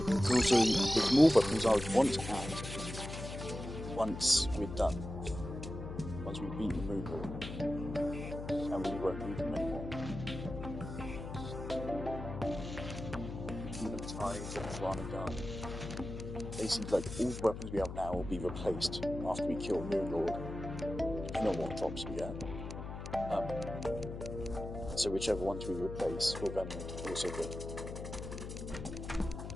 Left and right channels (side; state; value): left; noise; hum, 8 dB below the sound